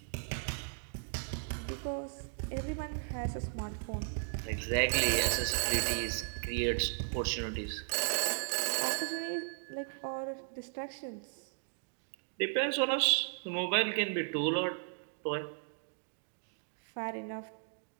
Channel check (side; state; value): left; silent; digital silence